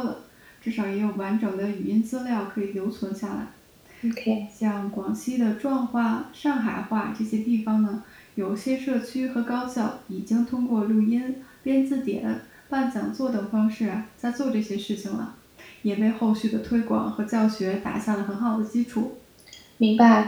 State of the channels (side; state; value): both; identical; correlation 1.00